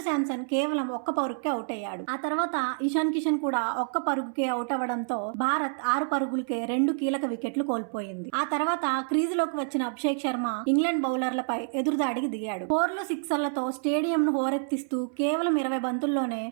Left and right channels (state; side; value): silent; left; 59 dB below the other